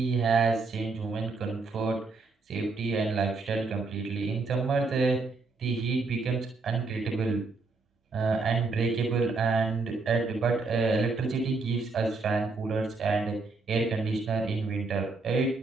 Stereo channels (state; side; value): quieter; left; 3.9 dB